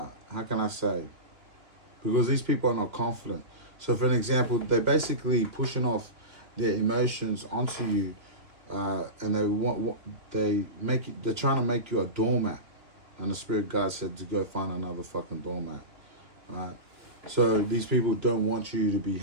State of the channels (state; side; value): late; left; 2.8 ms